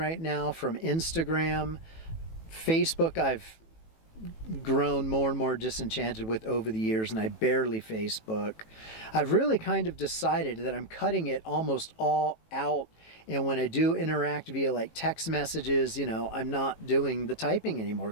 now from Instagram. Facebook, I've grown more and more disenchanted with over the years, and I barely Facebook. I've really kind of decided that I'm cutting it almost all out. And when I do interact via like text messages, I'm not doing the typing anymore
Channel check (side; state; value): right; late; 18 ms